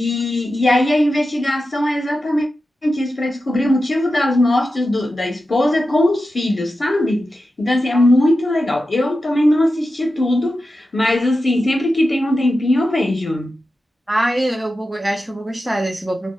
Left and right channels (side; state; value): both; normal; correlation 0.91